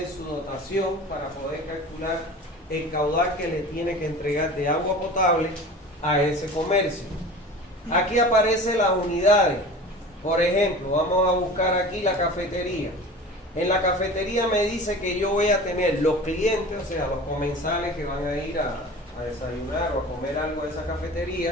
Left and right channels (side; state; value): both; normal; correlation 0.37